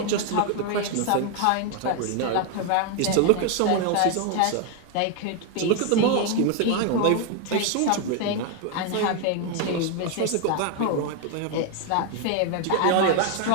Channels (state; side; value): different; both; correlation 0.01